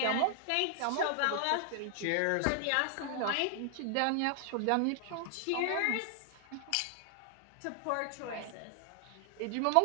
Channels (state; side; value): different; both; correlation 0.00